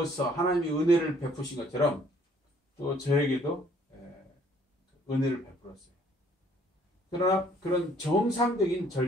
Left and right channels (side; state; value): both; normal; correlation 0.62